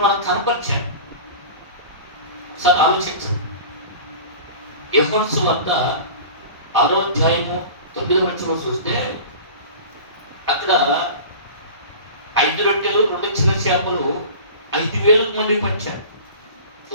మనకు కనపరిచాడు. ఒకసారి ఆలోచించండి. యోహాను సువార్త 6వ అధ్యాయము 9వ వచనం చూస్తే అక్కడ ఆయన 5 రొట్టెలు 2 చిన్న చేపలు 5,000 మంది పంచాడు.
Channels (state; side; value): inverted; both; correlation -0.37